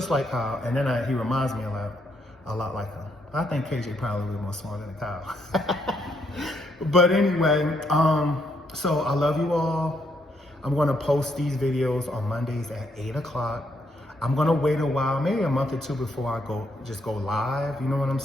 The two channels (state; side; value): normal; both; correlation 0.75